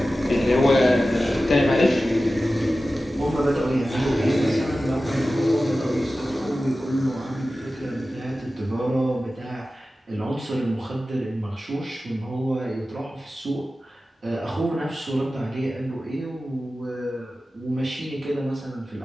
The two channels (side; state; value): both; normal; correlation 0.95